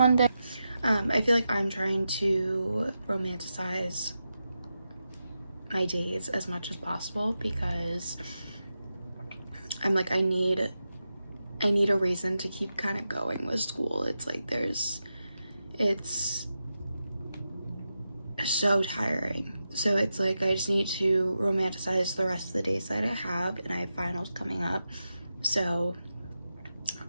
I feel like I'm trying to romanticize my days as much as possible because I'm like, I need a reason to keep kind of going with school. It's like it's so tiring. So it's like I just need to romanticize the rest of the days that I have, and I have finals coming up. So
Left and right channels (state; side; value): inverted; both; correlation -0.90